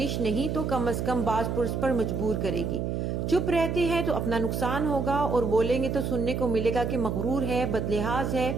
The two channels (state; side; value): noise; right; hum, 1 dB below the sound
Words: नहीं तो कम से कम बाज पुरुष पर मजबूर करेगी। चुप रहते हैं तो अपना नुकसान होगा और बोलेंगे तो सुनने को मिलेगा कि मगरूर है, बदलिहाज है,